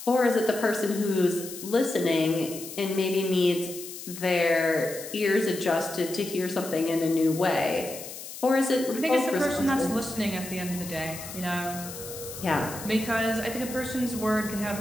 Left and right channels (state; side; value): noise; left; hiss, 11 dB below the sound